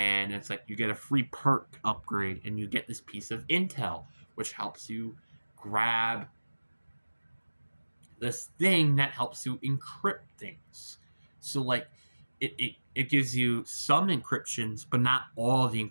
it's like you get a free perk upgrade and you get this piece of intel, which helps you grab this thing that helps you encrypt things. So like it gives you some encryptions, but not all the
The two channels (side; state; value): both; inverted; correlation -1.00